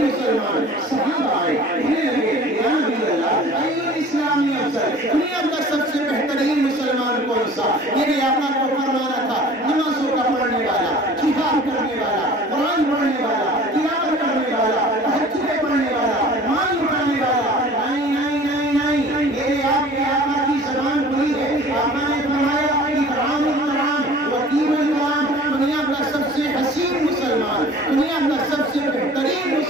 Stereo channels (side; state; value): both; normal; correlation 0.46